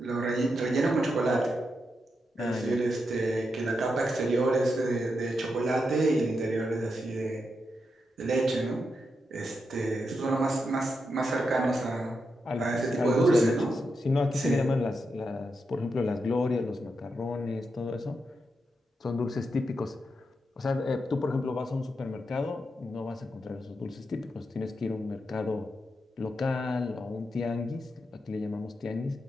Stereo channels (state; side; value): normal; both; correlation 0.85